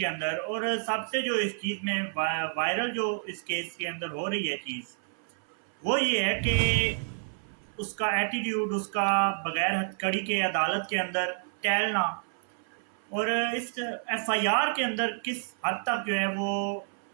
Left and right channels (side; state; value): left; silent; 58 dB below the other